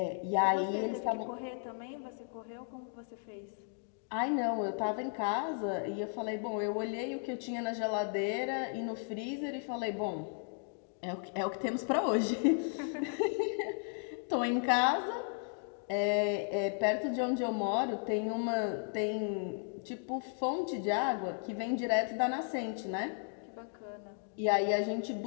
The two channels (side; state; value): right; silent; 54 dB below the other